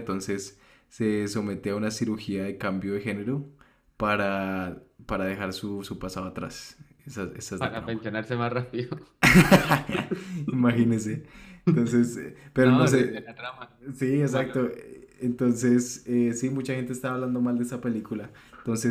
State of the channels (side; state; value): both; identical; correlation 1.00